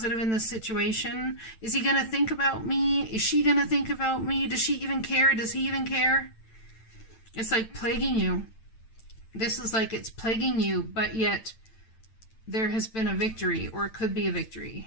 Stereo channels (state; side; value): late; right; 9.0 ms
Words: in this situation. Is he going to think about me? Is she going to think about me? Does she even care? Does he even care? It's like plaguing you. This is like it's plaguing you, but yet there has been a victory, or it could be a